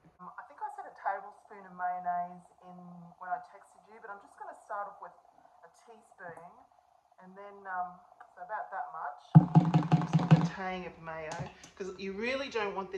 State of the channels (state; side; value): identical; both; correlation 1.00